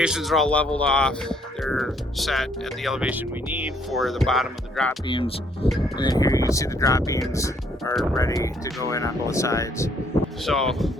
are all leveled off. They're set at the elevation we need for the bottom of the drop beams. And then here you can see the drop beams are ready to go in on both sides. So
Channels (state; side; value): normal; both; correlation 0.66